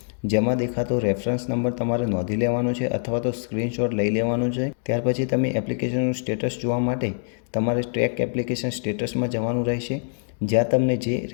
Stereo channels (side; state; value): right; silent; 62 dB below the other